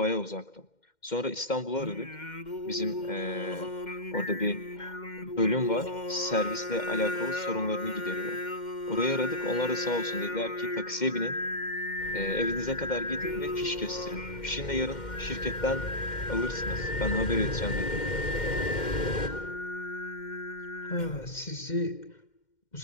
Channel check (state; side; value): late; right; 2.1 ms